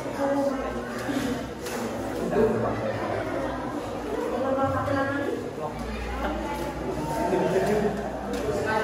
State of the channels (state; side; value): identical; both; correlation 1.00